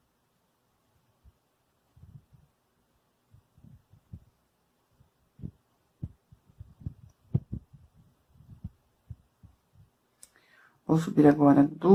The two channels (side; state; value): both; identical; correlation 1.00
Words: Vou subir agora